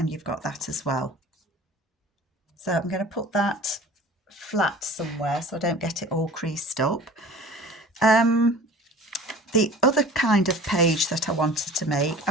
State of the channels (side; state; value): both; normal; correlation 0.43